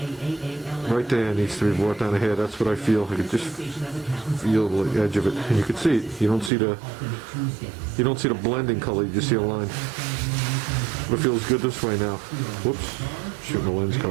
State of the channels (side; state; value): left; drops out; at 6.5 s